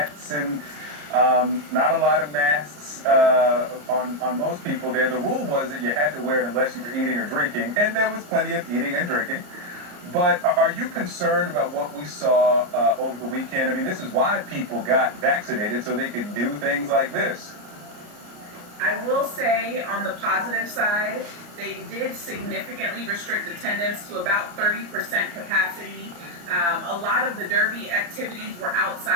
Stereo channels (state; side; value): late; left; 34 ms